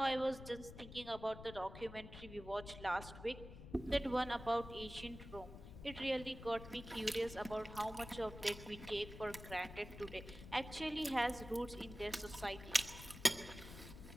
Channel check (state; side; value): noise; left; rumble, 13 dB below the sound